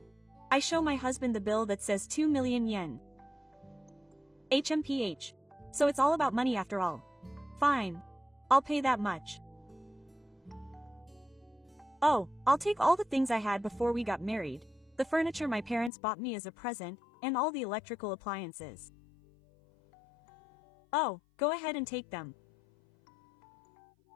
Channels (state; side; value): drops out; right; at 15.9 s